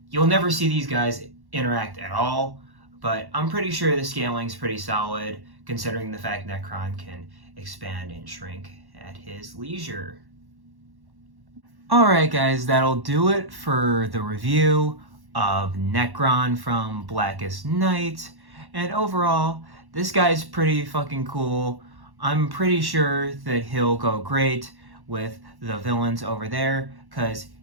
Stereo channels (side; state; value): left; late; 1.1 ms